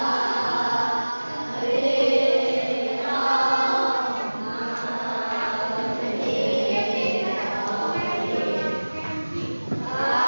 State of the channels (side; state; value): both; inverted; correlation -1.00